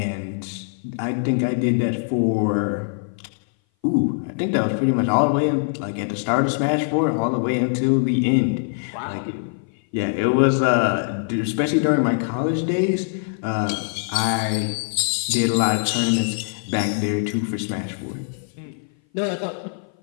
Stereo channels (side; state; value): right; silent; 58 dB below the other